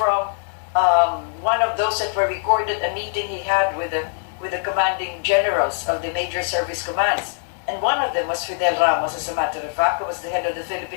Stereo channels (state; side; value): silent; right; digital silence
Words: one of those that were recorded, a meeting he had with the commanding generals of the major service commands. And one of them was Fidel Ramos, as a matter of fact, who was the head of the